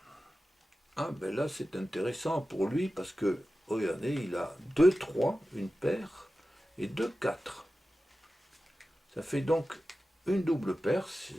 Ah ben là c'est intéressant pour lui parce que, regardez, il a 2, 3, une paire, et 2, 4. Ça fait donc une double paire,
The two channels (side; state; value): both; normal; correlation 0.94